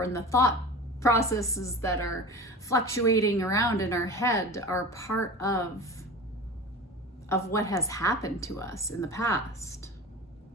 in the thought processes that are fluctuating around in our head, are part of what has happened to us in the past.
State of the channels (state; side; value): normal; both; correlation 0.34